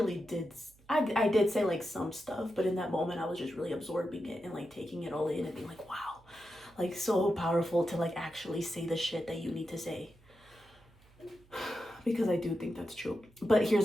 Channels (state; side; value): noise; right; hum, 28 dB below the sound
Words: did. I did say like some stuff, but in that moment I was just really absorbing it and like taking it all in and being like, wow, like so powerful to like actually say the shit that you need to say. Because I do think that's true. But